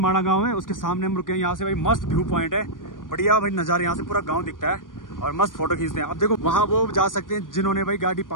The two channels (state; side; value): late; right; 0.89 ms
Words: गांव है, उसके सामने हम रुके हैं। यहाँ से भाई मस्त व्यू पॉइंट है, बढ़िया भाई नजारे, यहाँ से पूरा गाँव दिखता है और मस्त फोटो खींचते हैं। अब देखो वहाँ वो जा सकते हैं जिन्होंने भाई गाड़ी